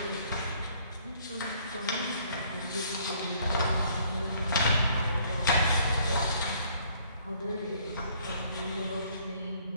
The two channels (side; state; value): both; inverted; correlation -0.62